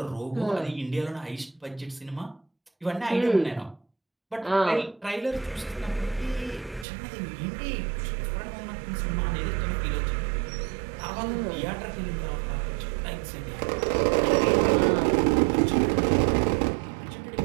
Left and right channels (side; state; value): left; drops out; at 6.9 s